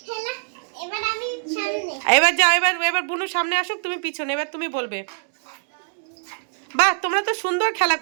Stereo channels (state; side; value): silent; left; digital silence